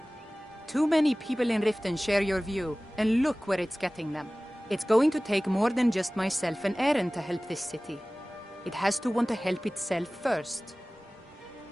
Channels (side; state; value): both; normal; correlation 0.98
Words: Too many people in Riften share your view, and look where it's getting them. It's going to take more than just myself and Eren to help this city. It has to want to help itself first.